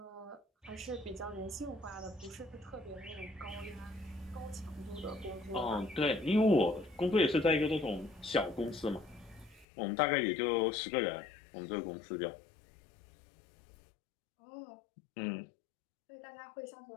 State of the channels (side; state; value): right; drops out; at 9.7 s